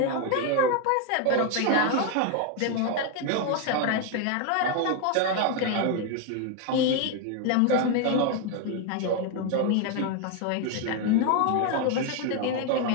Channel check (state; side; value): different; both; correlation 0.01